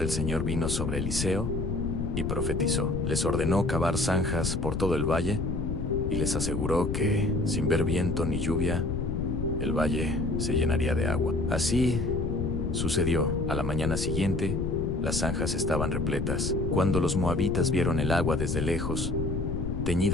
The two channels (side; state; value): left; noise; rumble, 2 dB below the sound